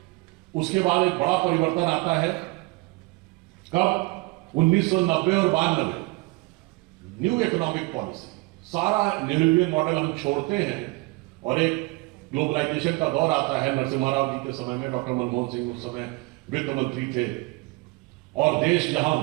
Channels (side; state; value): left; quieter; 24.6 dB